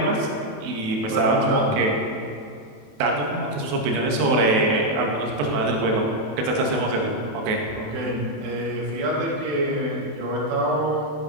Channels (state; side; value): late; left; 27 ms